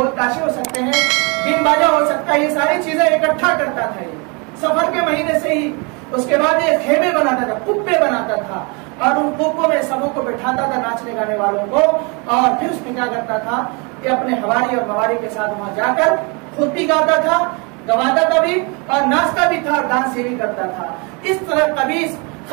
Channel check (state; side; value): quieter; left; 31.5 dB